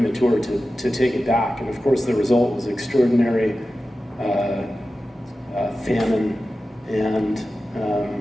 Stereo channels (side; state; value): both; normal; correlation 0.94